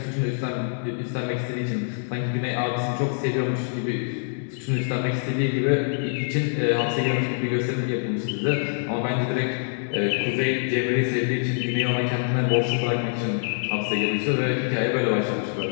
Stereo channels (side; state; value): right; silent; digital silence